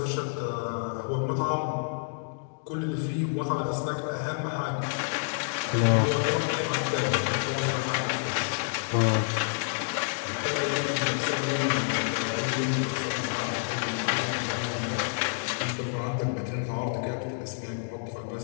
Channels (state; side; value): silent; right; digital silence